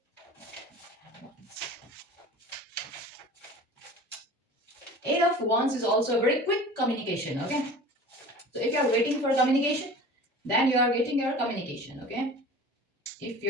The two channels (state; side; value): normal; both; correlation 0.40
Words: Eight of Wands is also a very quick communication. Okay, so if you are waiting for communication, then you are getting your communication. Okay, if